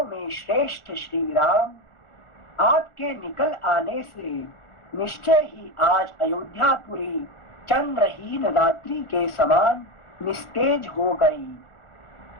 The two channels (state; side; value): late; right; 1.4 ms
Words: में श्रेष्ठ श्री राम, आपके निकल आने से निश्चय ही आज अयोध्यापुरी चंद्रहीन रात्रि के समान निस्तेज हो गई।